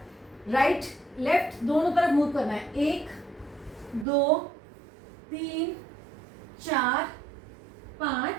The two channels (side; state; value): left; drops out; at 4.0 s